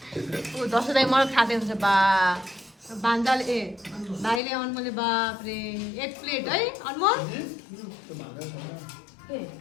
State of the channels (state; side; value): drops out; right; at 4.4 s